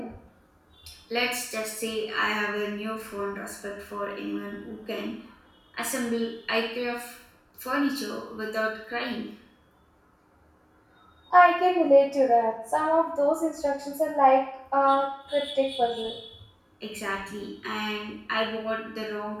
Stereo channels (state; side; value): identical; both; correlation 1.00